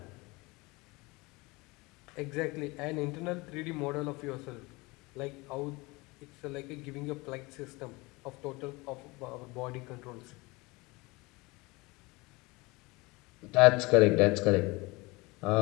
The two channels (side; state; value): right; quieter; 24.1 dB